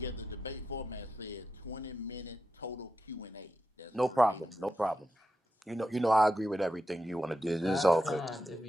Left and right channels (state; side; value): normal; both; correlation 0.87